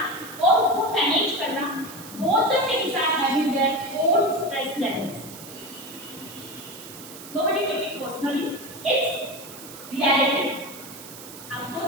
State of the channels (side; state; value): right; noise; hiss, 15 dB below the sound